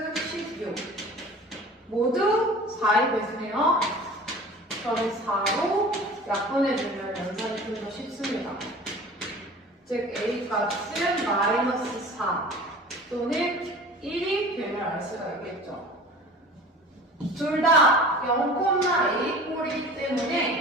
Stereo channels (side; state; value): both; normal; correlation 0.41